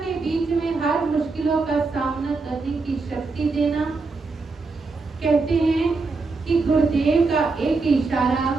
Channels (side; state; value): left; quieter; 4.0 dB